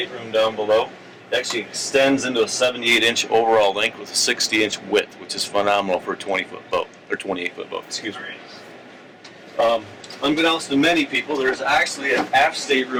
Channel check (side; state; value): both; identical; correlation 1.00